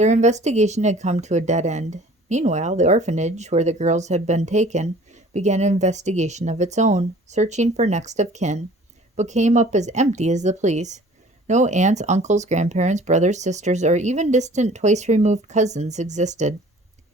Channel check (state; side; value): normal; both; correlation 0.49